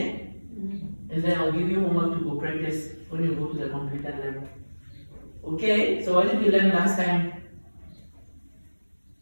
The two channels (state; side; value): inverted; both; correlation -1.00